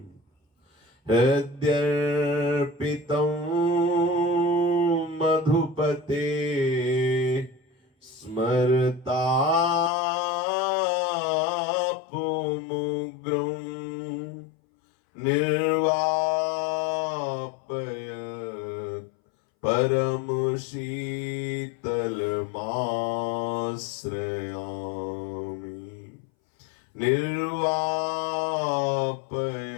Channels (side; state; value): right; drops out; at 9.9 s